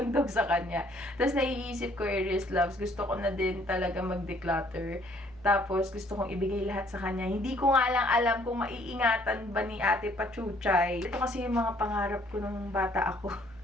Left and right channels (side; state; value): left; noise; hum, 24 dB below the sound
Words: daw sa kanya. Tapos naiisip ko, Aries Loves, gusto ko na din talaga mag-declutter. Tapos gusto kong ibigay lahat sa kanya. Hindi ko nga lang alam kung maiingatan ba ni Ate Pachuchay. Ito kasi yung mga pangarap ko nung bata ako.